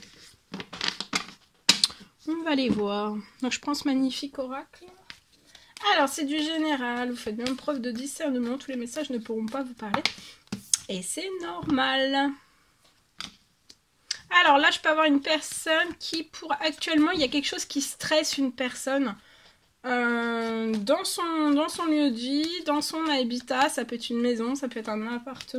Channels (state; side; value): identical; both; correlation 1.00